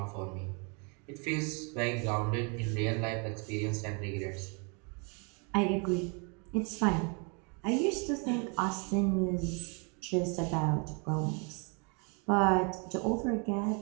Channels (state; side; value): quieter; left; 35.0 dB